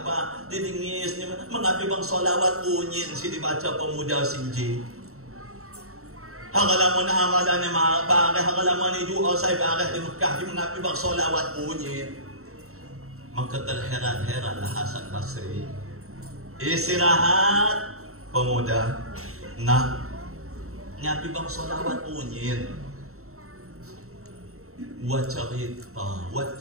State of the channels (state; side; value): late; left; 0.63 ms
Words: didengis mengapi bang solawat unyin si dibaca pemuda sinji. Hangalamun amalan ni bareh, hangalamun ni doa saya bareh di Mekah di mengapi bang solawat unyin. Maka terheran-heranlah Hasan Basri. Istirahat pemuda nak ngapi bang solawat unyin. Buat cerita, buat